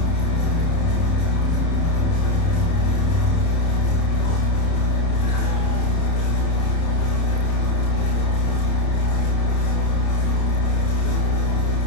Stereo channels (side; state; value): right; late; 30 ms